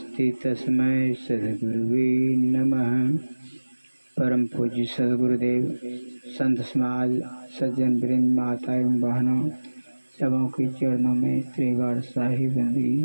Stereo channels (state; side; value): inverted; both; correlation -1.00